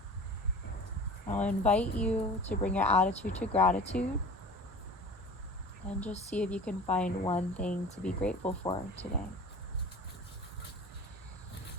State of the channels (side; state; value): both; normal; correlation 0.39